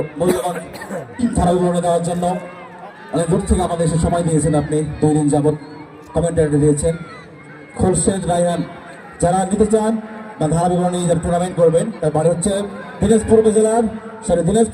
মূল্যবান ধারা বিবরণী দেওয়ার জন্য। অনেক দূর থেকে আমাদের এসে সময় দিয়েছেন, আপনি 2 দিন যাবৎ কমেন্টারি দিয়েছেন। খোরশেদ রায়হান যারা নিতে চান বা ধারা বিবরণী যারা টুর্নামেন্ট করবেন, তার বাড়ি হচ্ছে দিনাজপুর উপজেলার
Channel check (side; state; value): both; identical; correlation 1.00